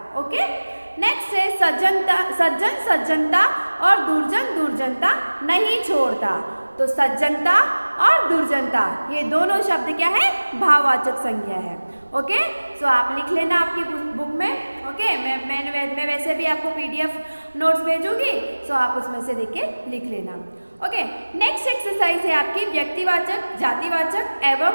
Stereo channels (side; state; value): both; inverted; correlation -1.00